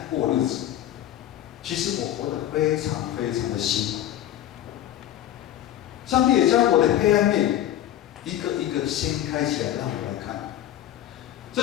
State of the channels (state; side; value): quieter; right; 12.2 dB